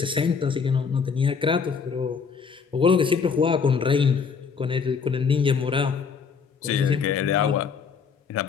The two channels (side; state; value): right; quieter; 5.8 dB